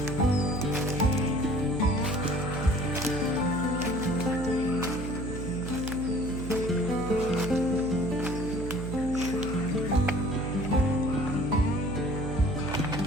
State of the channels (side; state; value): right; noise; hum, 6 dB below the sound